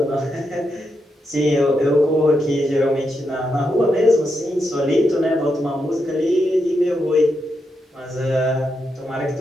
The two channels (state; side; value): normal; both; correlation 0.84